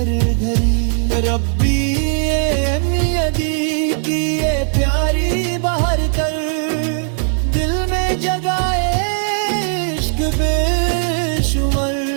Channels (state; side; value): silent; left; digital silence